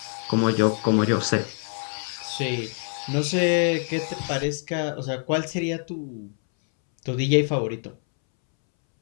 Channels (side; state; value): right; silent; 62 dB below the other